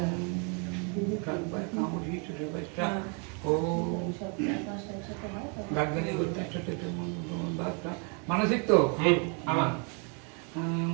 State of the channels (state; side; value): quieter; left; 37.0 dB